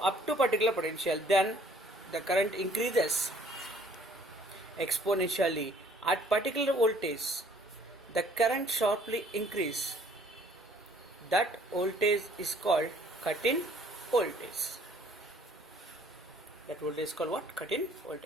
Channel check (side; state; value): both; normal; correlation 0.58